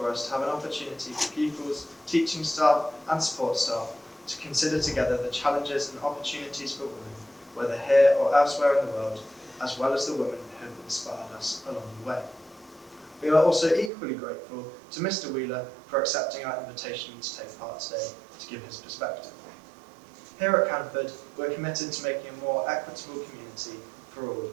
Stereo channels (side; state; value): left; drops out; at 13.9 s